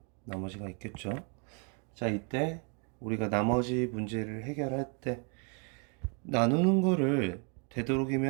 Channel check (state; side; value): quieter; left; 36.3 dB